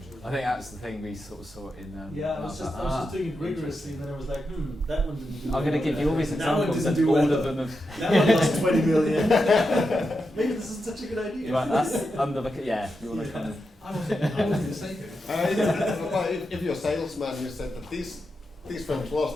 I think that's the thing we sort of saw in. I was just doing it rigorously, and then I was like, that one didn't do I'm going to give you all these That one examples, didn't and do all well. of them have. That one lost 20 million. Maybe this isn't such a good idea. Right, that's under the you want to kind of. I wasn't going to say it. but if you're a salesman, you said that these films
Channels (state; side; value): normal; both; correlation 0.87